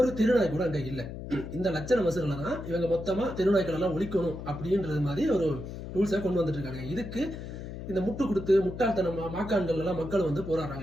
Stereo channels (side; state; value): left; noise; hum, 9 dB below the sound